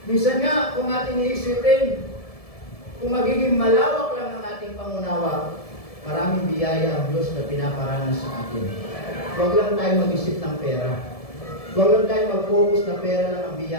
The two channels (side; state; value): right; late; 1.7 ms